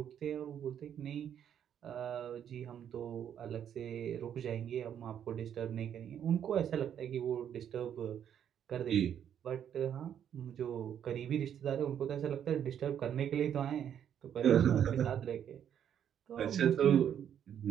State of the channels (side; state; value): left; quieter; 9.3 dB